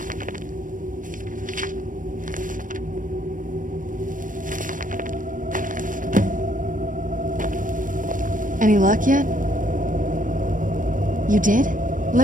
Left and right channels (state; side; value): late; left; 0.38 ms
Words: Any luck yet? You did?